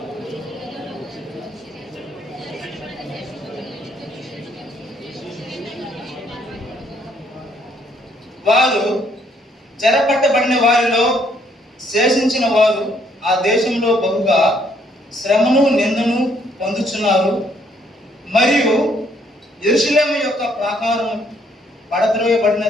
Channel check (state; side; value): normal; both; correlation 0.68